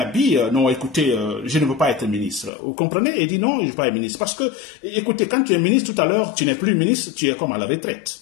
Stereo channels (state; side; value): drops out; right; at 2.5 s